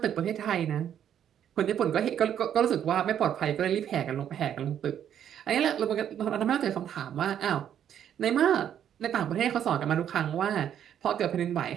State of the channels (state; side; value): quieter; left; 9.7 dB